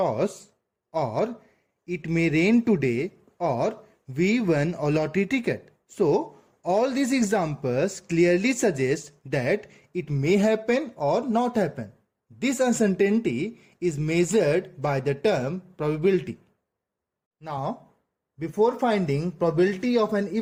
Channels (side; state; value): both; identical; correlation 1.00